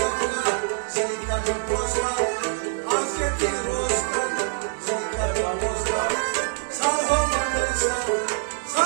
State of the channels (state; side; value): silent; left; digital silence